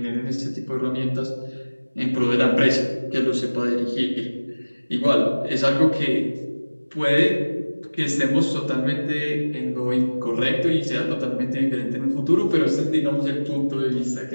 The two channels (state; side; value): inverted; both; correlation -1.00